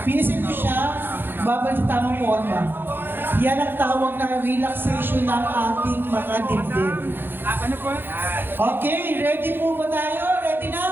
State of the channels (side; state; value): left; late; 0.10 ms